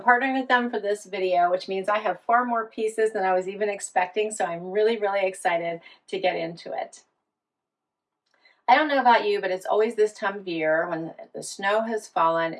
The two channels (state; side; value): identical; both; correlation 1.00